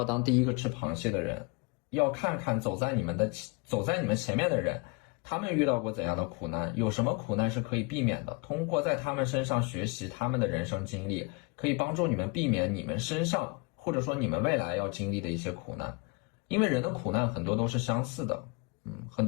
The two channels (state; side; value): quieter; right; 29.1 dB